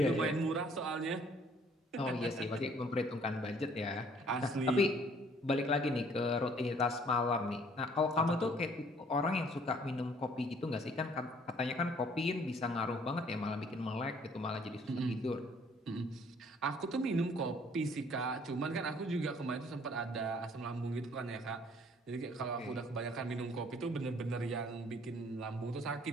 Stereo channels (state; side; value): normal; both; correlation 0.59